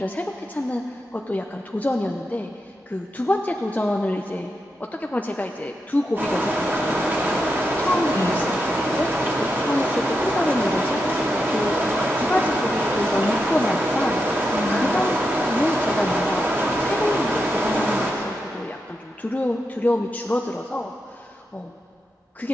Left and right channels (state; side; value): normal; both; correlation 0.86